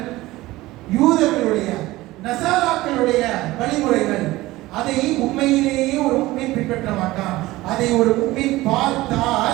யூதர்களுடைய, நசாராக்களுடைய வழிமுறைகள். அதை உண்மையிலேயே ஒரு முஃமின் பின்பற்ற மாட்டான். அதை ஒரு முஃமின்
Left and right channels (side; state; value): left; quieter; 18.3 dB